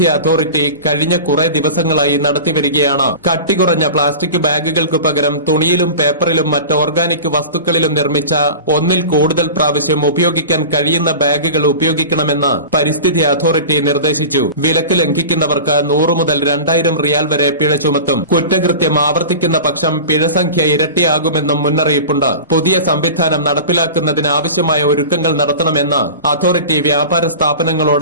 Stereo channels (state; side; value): inverted; both; correlation -0.33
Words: അതോറിറ്റി കഴിഞ്ഞ കുറെ ദിവസങ്ങളായി നടത്തിവരികയാണ്. കട്ടികുറഞ്ഞ പ്ലാസ്റ്റിക് ബാഗുകൾക്ക് പകരം തുണിയിലും പേപ്പറിലും മറ്റ് ഓർഗാനിക് വസ്തുക്കളിലും നിർമ്മിച്ച ഒന്നിൽ കൂടുതൽ പ്രാവശ്യം ഉപയോഗിക്കാൻ കഴിയുന്ന ബാഗുകൾ ഉപയോഗിക്കണമെന്ന് പരിസ്ഥിതി അതോറിറ്റി നിർദ്ദേശിച്ചു. വിലക്ക് ലംഘിക്കുന്നവർക്ക് 100 മുതൽ 2000 റിയാൽ വരെ പിഴ ചുമത്തും. കുറ്റകൃത്യം ആവർത്തിക്കുന്ന പക്ഷം പിഴസംഖ്യ ഇരട്ടിയാകുമെന്നും മുന്നറിയിപ്പുണ്ട്. പുതിയ സംവിധാനം നടപ്പിലാക്കുന്നതിന് ആവശ്യമായ ഒരുക്കങ്ങൾ നടത്തണമെന്ന് അതോറിറ്റി വ്യാപാര